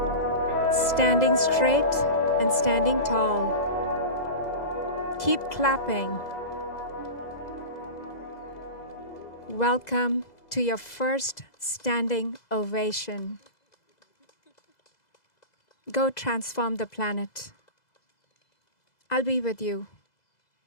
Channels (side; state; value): right; late; 2.0 ms